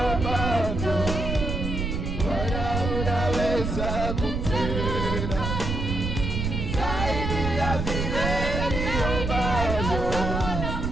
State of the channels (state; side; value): noise; right; rumble, 2 dB below the sound